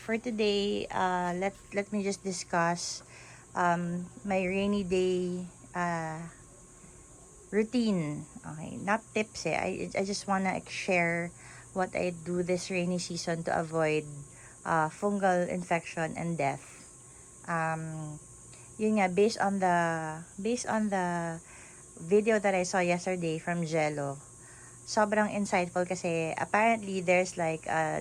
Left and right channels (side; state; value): both; identical; correlation 1.00